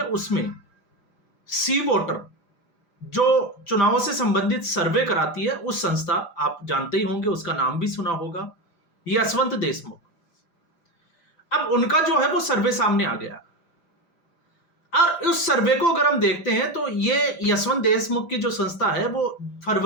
उसमें सी वोटर जो चुनावों से संबंधित सर्वे कराती है, उस संस्था आप जानते ही होंगे, उसका नाम भी सुना होगा, यशवंत देशमुख। अब उनका जो है वो सर्वे सामने आ गया और उस सर्वे को अगर हम देखते हैं तो ये यशवंत देशमुख की जो संस्था है वो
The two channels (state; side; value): late; right; 5.0 ms